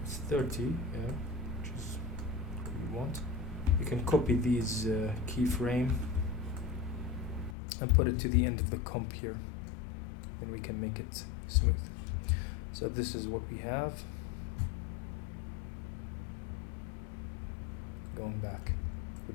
it's 30, yeah, which is what you want. You can copy these keyframe and put it to the end of the comp here, and we can make it smooth. So this is what we have. Going back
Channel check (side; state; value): right; drops out; at 7.6 s